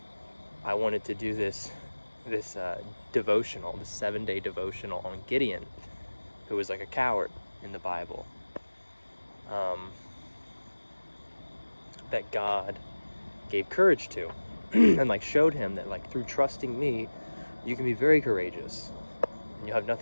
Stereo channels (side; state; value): both; inverted; correlation -1.00